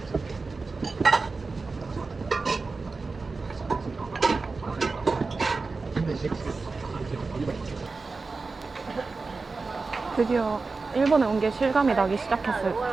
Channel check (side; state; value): left; quieter; 4.1 dB